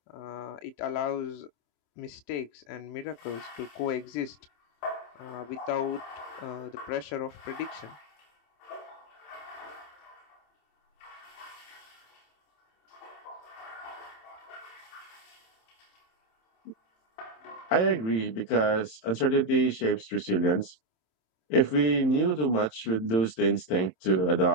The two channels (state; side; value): late; right; 27 ms